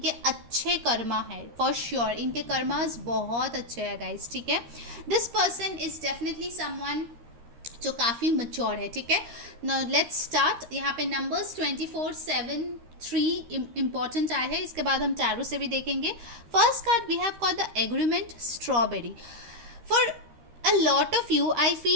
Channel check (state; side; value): late; left; 13 ms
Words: अच्छे कर्मा है फॉर श्योर, इनके कर्मास बहुत अच्छे हैं गाइस, ठीक है। This person is definitely someone जो काफ़ी मच्योर है, ठीक है। Now let's start. यहाँ पे नंबर्स 24, 7, 3 इंपॉर्टेंट आए हैं, इसके बाद हम टैरो से भी देखेंगे। First card we have called the agreement strawberry. For a lot of you I